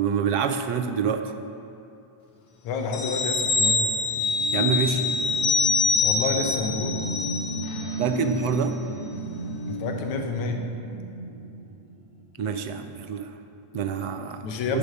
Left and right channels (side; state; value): right; late; 7.9 ms